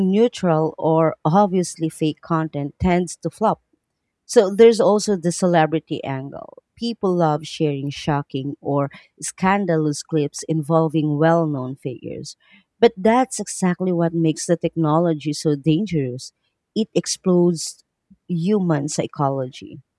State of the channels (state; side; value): identical; both; correlation 1.00